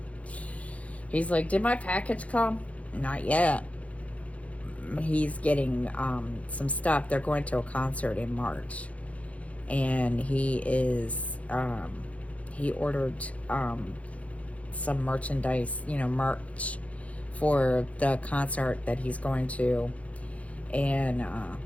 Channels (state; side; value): late; right; 0.066 ms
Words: like, did my package come? Not yet. He's getting some stuff. They're going to a concert in March, and he ordered some merchandise, merch for the concert that he's going to. And